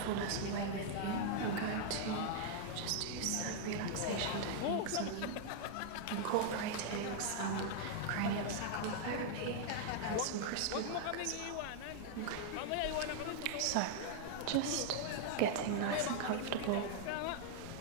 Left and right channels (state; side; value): different; both; correlation -0.01